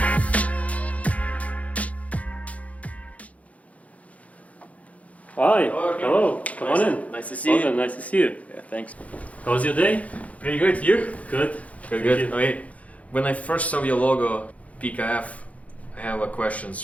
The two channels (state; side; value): late; right; 0.067 ms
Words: Hi. Hello. Hello. Come on in. Nice to see you. Nice to see you. Yeah, thanks. How was your day? Pretty good. You? Good. Good. Thank you. Okay. When I first saw your logo, PKF, I have a